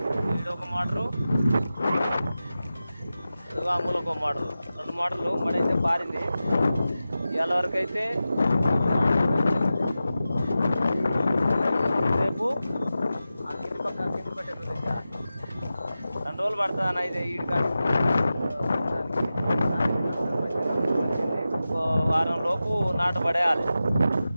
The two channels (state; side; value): inverted; both; correlation -0.93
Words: ఇది ఒక మోటరు, ఆ మూలకు ఒక మోటరు, 2 మోటార్లు మడైతే పారింది. ఇవాళ వరకు అయితే రేపు ఆ కింది పట్టేస్తుంది. ఇంకా 2 రోజులు పడుతుంది అన్న. అయితే ఈడు కానీ ఇంకో వారం లోపు నాటు పడేయాలి.